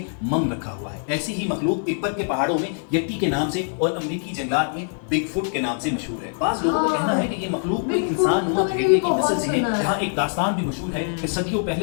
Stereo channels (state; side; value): silent; right; 56 dB below the other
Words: मम रखा हुआ है। ऐसी ही मखलूक तिब्बत के पहाड़ों में यट्टी के नाम से और अमरीकी जंगलात में बिगफुट के नाम से मशहूर है। बाज़ लोगों का कहना है कि ये मखलूक कोई इंसान नुमा भेड़िए की नस्ल से है। यहाँ एक दास्तान भी मशहूर है कि सदियों